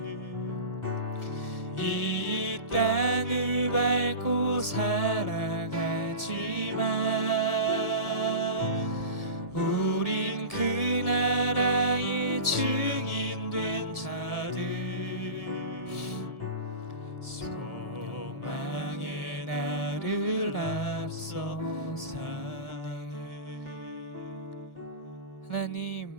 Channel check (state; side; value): late; right; 1.7 ms